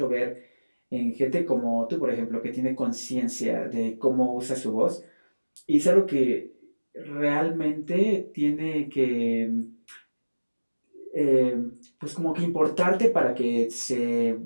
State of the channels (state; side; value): inverted; both; correlation -1.00